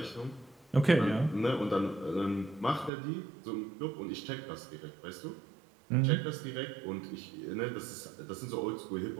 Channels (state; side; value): drops out; left; at 2.9 s